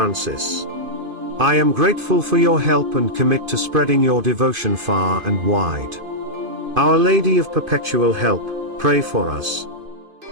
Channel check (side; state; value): left; late; 2.5 ms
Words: I am grateful for your help and commit to spreading your devotion far and wide. Our Lady of Perpetual Help, pray for us.